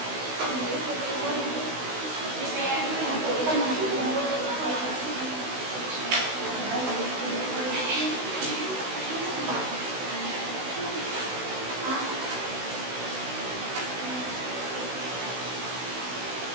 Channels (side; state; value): left; late; 16 ms